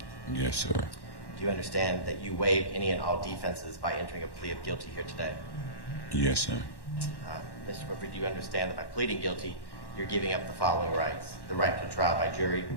Yes, sir. Do you understand that you waive any and all defenses by entering a plea of guilty here today? Yes, sir. Mr. Winfrey, do you understand that by pleading guilty, you're giving up the following rights: the right to trial by jury,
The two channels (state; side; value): late; right; 1.1 ms